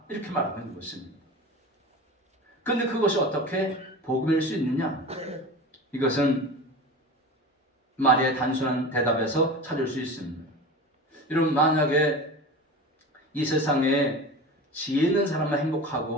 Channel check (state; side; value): normal; both; correlation 0.32